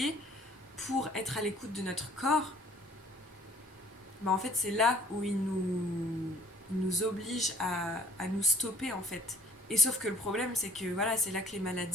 pour être à l'écoute de notre corps, bah en fait c'est là où il nous oblige à nous stopper en fait. Et sauf que le problème c'est que voilà, c'est là que les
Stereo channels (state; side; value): normal; both; correlation 0.54